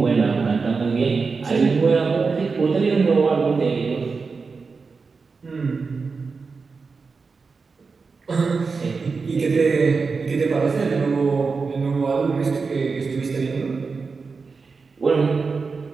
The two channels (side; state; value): left; quieter; 4.7 dB